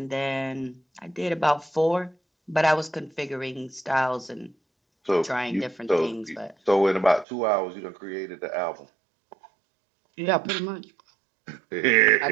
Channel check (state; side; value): drops out; left; at 7.2 s